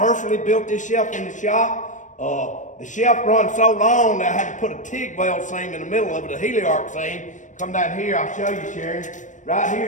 built this shelf in the shop. The shelf runs so long that I had to put a TIG weld seam in the middle of it, a heliarc seam. Come down here, I'll show you, Sharon. Right here,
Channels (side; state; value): right; late; 0.36 ms